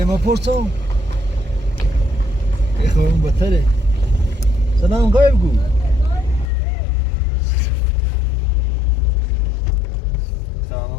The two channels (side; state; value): right; drops out; at 6.5 s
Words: ما پرسم ای خورم بطره سلام غایب گو